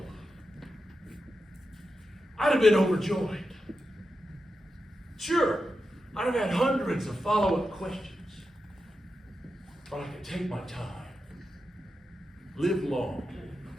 I'd have been overjoyed. Sure, I'd have had hundreds of follow-up questions, but I could take my time, live long,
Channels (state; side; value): normal; both; correlation 0.89